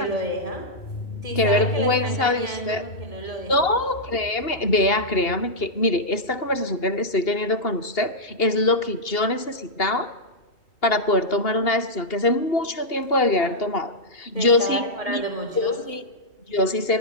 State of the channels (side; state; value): right; late; 2.8 ms